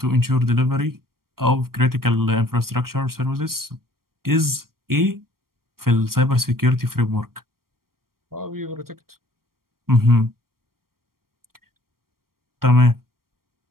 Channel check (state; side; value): late; left; 0.93 ms